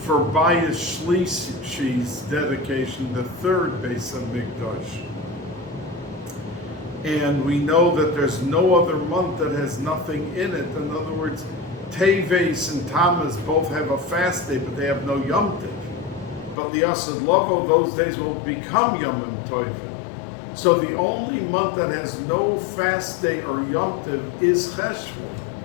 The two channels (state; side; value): drops out; right; at 16.6 s